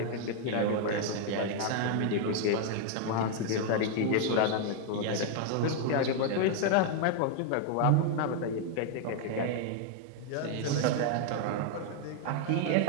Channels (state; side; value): different; both; correlation 0.00